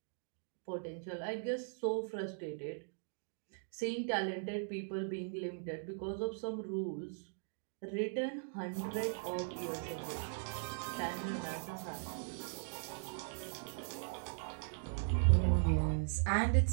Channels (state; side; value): silent; left; digital silence